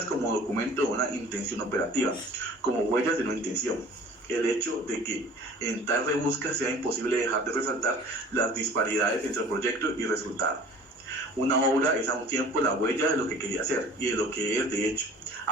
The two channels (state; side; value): normal; both; correlation 0.47